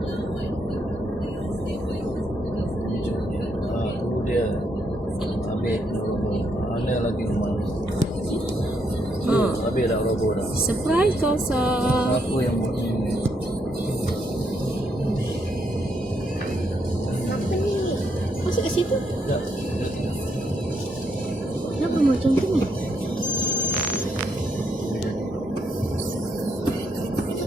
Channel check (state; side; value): normal; both; correlation 0.76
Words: dia ambil mana lagi rumah habis dah logo dah. Surprise Kosa. Aku yang buat ni. Apa ni? Masuk ke situ? Tak, dia tengok. Kenapa macam tu ni?